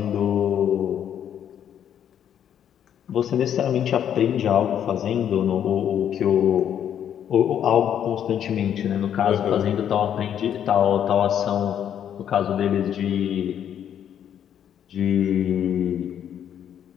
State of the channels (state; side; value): quieter; right; 9.5 dB